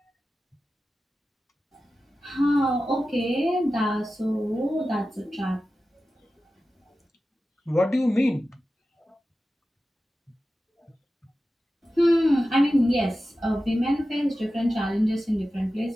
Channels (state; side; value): normal; both; correlation 0.94